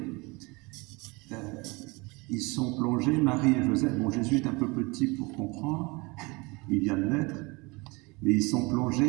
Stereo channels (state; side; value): quieter; left; 26.2 dB